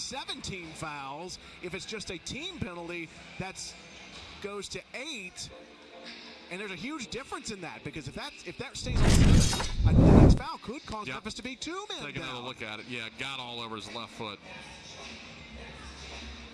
fouls. If it's just a team penalty, that goes to 8. And there's a huge difference in that, because if that stays on 7, the next foul could cause Memphis to be 2 men Take another look at it. Yeah, got all over his left foot.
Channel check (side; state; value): both; identical; correlation 1.00